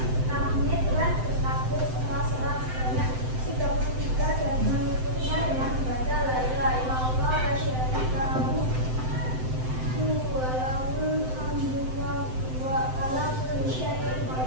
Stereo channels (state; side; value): late; left; 7.8 ms